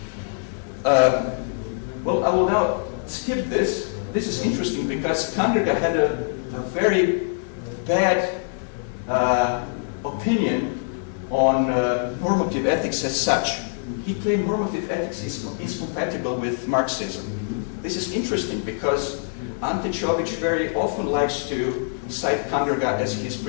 Well, I will now skip this. This is interesting because Tangerga had a very bad opinion on normative ethics as such. He claimed normative ethics is compatible with Marxism. This is interesting because Ante Čović very often likes to cite Kanderga as his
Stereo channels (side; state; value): right; silent; digital silence